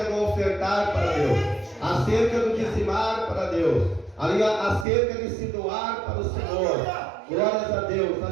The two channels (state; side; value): drops out; left; at 4.9 s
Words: do ofertar para Deus, acerca do dizimar para Deus, acerca de se doar para o Senhor. Glórias a Deus,